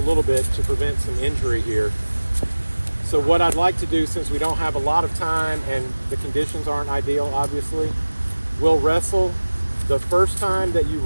little bit to prevent some injury here. So what I'd like to do, since we don't have a lot of time and the conditions aren't ideal, obviously, we'll wrestle. The first time that you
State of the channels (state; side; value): inverted; both; correlation -1.00